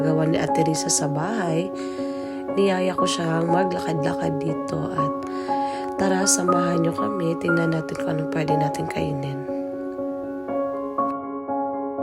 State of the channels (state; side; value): identical; both; correlation 1.00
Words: ni Ate Risa sa bahay. Niyaya ko siyang maglakad-lakad dito at tara samahan niyo kami, tingnan natin kung anong pwede natin kainin.